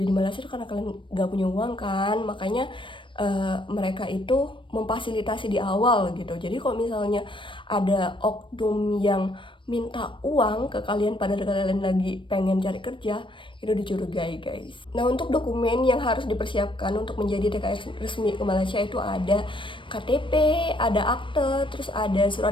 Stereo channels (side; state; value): right; late; 0.24 ms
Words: di Malaysia itu karena kalian gak punya uang kan, makanya mereka itu memfasilitasi di awal gitu. Jadi kalau misalnya ada oknum yang minta uang ke kalian padahal kalian lagi pengen cari kerja, itu dicurigai guys. Nah, untuk dokumen yang harus dipersiapkan untuk menjadi TKI resmi ke Malaysia itu ada KTP, ada akte, terus ada